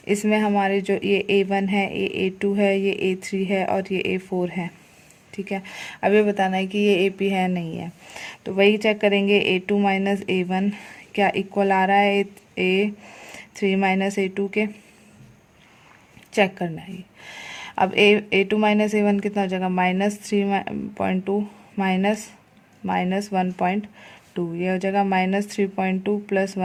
इसमें हमारे जो ये A1 है, ये A2 है, ये A3 है और ये A4 है। ठीक है। अब ये बताना है कि ये AP है नहीं है, तो वही चेक करेंगे, A2 माइनस A1 क्या इक्वल आ रहा है A3 माइनस A2 के, चेक करना है। अब A2 माइनस A1 कितना हो जाएगा, -3.2 माइनस -1.2, ये हो जाएगा -3.2 प्लस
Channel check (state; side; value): identical; both; correlation 1.00